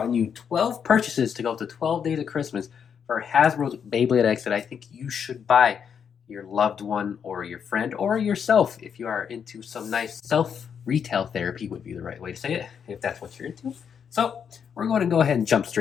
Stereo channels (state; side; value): quieter; right; 7.4 dB